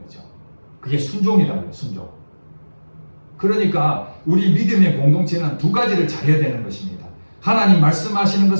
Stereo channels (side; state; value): both; inverted; correlation -1.00